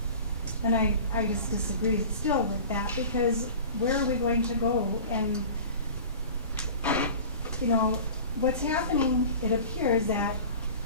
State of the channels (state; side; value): inverted; both; correlation -0.39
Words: And I just disagree still with that, because where are we going to go? And, you know, what's happening, it appears that